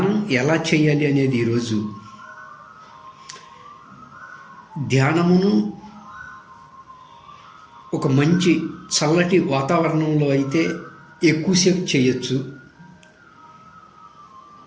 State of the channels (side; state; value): both; identical; correlation 1.00